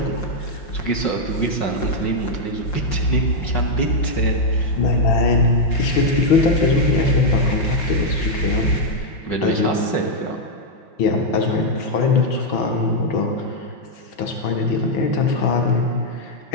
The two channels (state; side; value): late; right; 5.4 ms